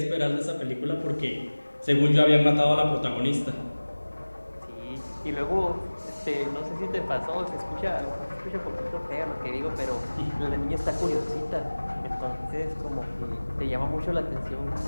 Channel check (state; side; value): inverted; both; correlation -1.00